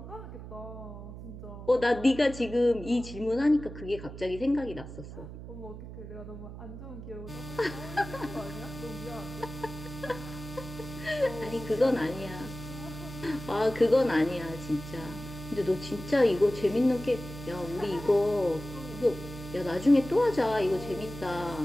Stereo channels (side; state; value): right; noise; hum, 11 dB below the sound